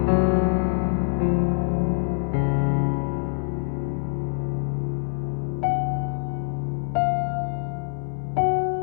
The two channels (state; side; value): silent; right; digital silence